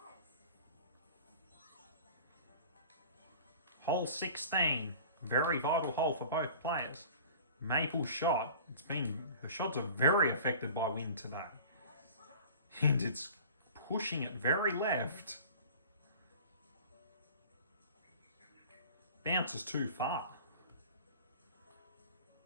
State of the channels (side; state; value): both; inverted; correlation -0.43